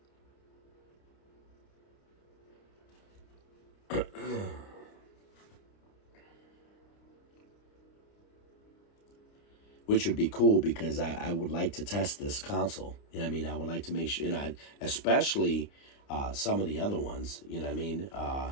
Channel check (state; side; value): late; right; 29 ms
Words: Which would be cool because I would like to test this console. You know what I mean? I would like to make sure, especially some of the other ones. You know what I mean? Let